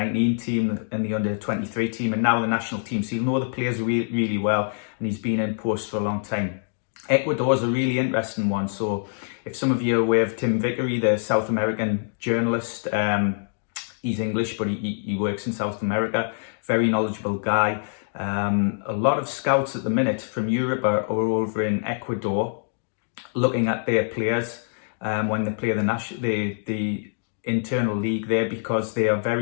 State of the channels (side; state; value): right; silent; digital silence